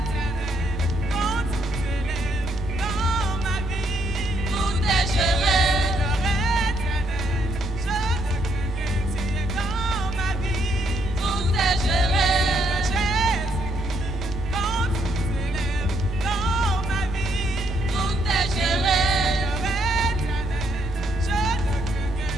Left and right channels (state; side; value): normal; both; correlation 0.73